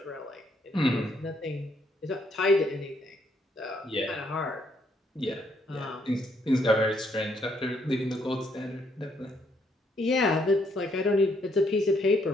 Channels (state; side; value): normal; both; correlation 0.71